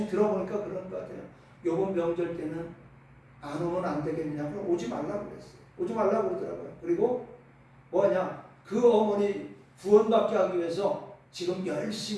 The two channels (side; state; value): both; identical; correlation 1.00